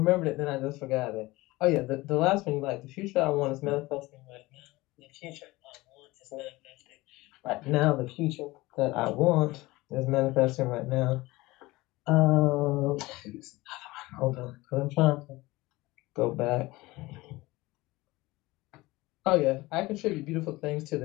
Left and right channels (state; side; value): quieter; right; 20.4 dB